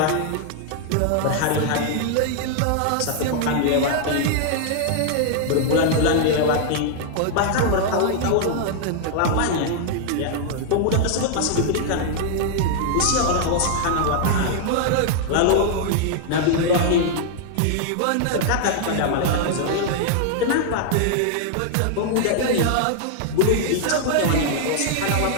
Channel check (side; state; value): both; different; correlation 0.00